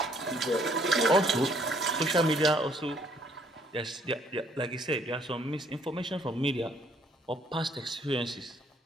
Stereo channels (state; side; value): normal; both; correlation 0.64